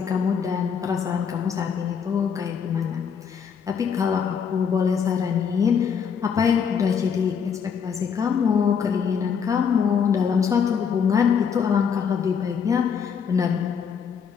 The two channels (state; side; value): quieter; right; 6.9 dB